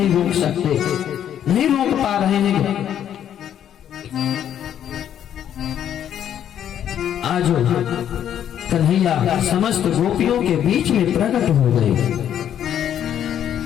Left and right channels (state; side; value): quieter; right; 10.0 dB